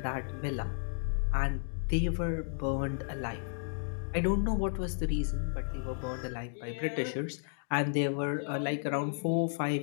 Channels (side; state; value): right; silent; digital silence